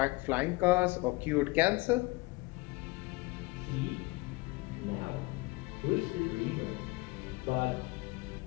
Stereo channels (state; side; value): quieter; right; 23.9 dB